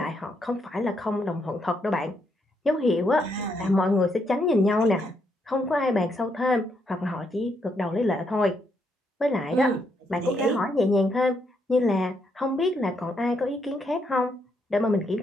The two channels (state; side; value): normal; both; correlation 0.77